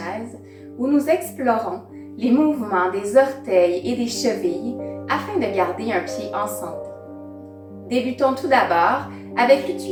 où nous explorons les mouvements des orteils et des chevilles afin de garder un pied en santé. Débutons tout d'abord avec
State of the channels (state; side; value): identical; both; correlation 1.00